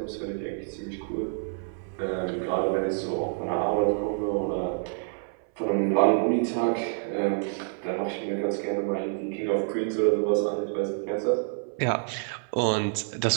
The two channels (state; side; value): silent; left; 60 dB below the other